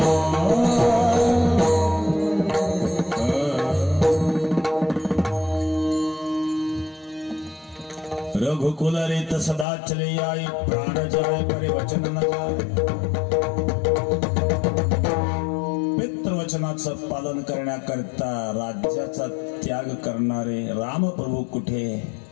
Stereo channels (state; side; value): drops out; right; at 9.7 s